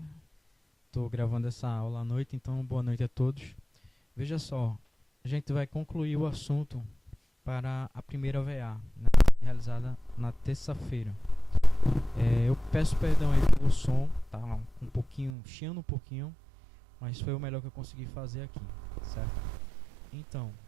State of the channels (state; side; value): drops out; left; at 15.3 s